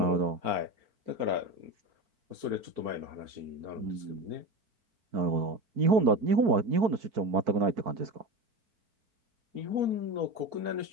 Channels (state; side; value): late; left; 4.4 ms